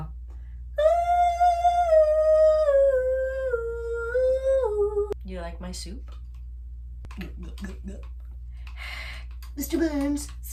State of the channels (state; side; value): identical; both; correlation 1.00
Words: You like my soup? Mr. Burns,